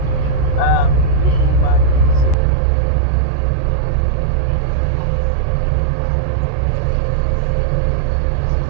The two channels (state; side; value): drops out; left; at 2.4 s